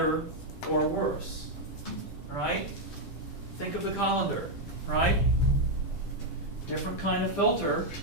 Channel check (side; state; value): right; late; 10 ms